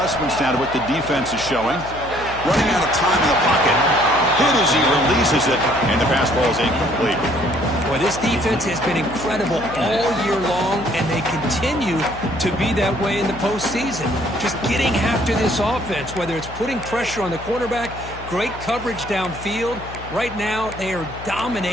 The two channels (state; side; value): noise; left; hum, 14 dB below the sound